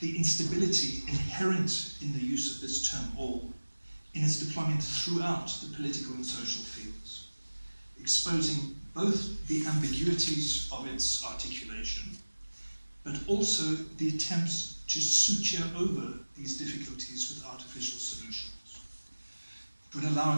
the instability inherent in the use of this term all in its deployment throughout the political and social fields, exposing both the ambiguities of its articulation, but also the attempts to suture over these difficulties with artificial solutions. It would allow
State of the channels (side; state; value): both; inverted; correlation -1.00